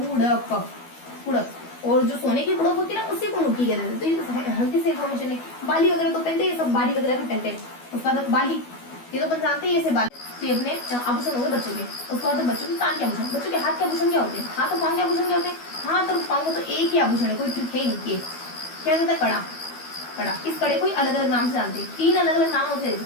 कुड़क। और जो सोने की कुड़क होती है ना उसी को मुर्की कहते हैं। तो ये हल्की सी इन्फॉर्मेशन है। बाली वगैरह तो पहनते हैं, सब बाली वगैरह भी पहनते हैं। उसके बाद बाली, ये तो अपन जानते हैं, ये से बाली। तो ये अपने आभूषण हो गए बच्चों के। उसके बाद बच्चों के कान के आभूषण, बच्चों के हाथ के आभूषण क्या होते हैं? हाथ और पांव के आभूषण क्या होते हैं? हाथ और पांव को तो एक ही आभूषण है, कोई ट्रिक है नहीं। क्या कहता है? कड़ा, कड़ा। इस कड़े को अलग अलग नाम से जानते हैं, 3 अलग अलग नाम होते हैं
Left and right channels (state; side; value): late; right; 12 ms